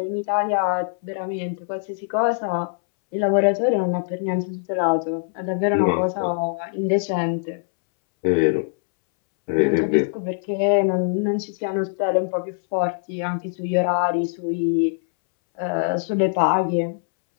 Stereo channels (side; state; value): right; silent; 64 dB below the other